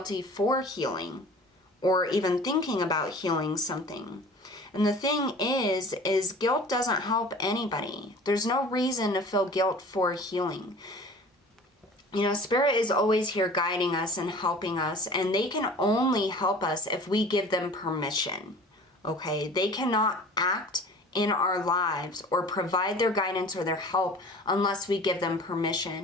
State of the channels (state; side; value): normal; both; correlation 0.43